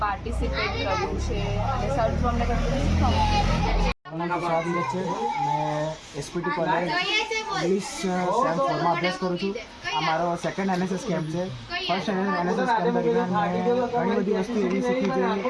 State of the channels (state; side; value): identical; both; correlation 1.00